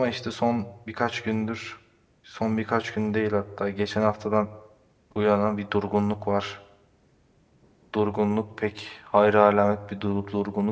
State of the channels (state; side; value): identical; both; correlation 1.00